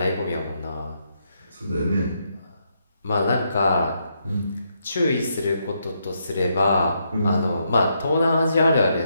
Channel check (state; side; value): inverted; both; correlation -0.78